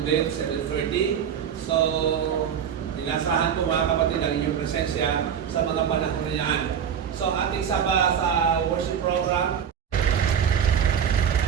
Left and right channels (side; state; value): left; quieter; 8.2 dB